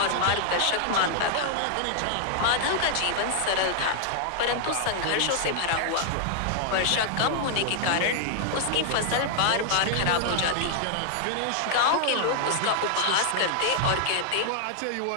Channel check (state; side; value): different; both; correlation -0.01